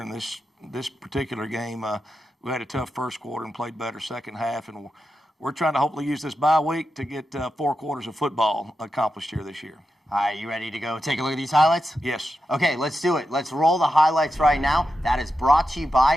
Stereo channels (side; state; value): both; normal; correlation 0.89